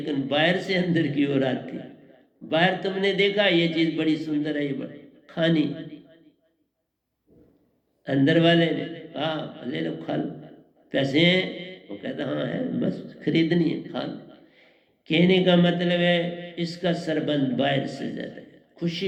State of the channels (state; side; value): identical; both; correlation 1.00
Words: बाहर से अंदर की ओर आती है, बाहर तुमने देखा ये चीज बड़ी सुंदर है, ये बड़ी खानी, अंदर वाले ने कहा ले लो खा लो, पैसे हैं, वो कहता हाँ है, बस खरीदनी है खा लो। कहने का मतलब है इसका सरबंध बाहर से ज्यादा है,